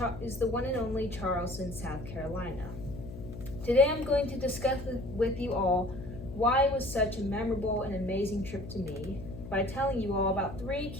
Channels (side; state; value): left; noise; hum, 11 dB below the sound